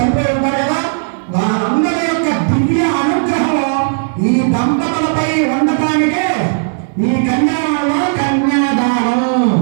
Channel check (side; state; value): left; silent; digital silence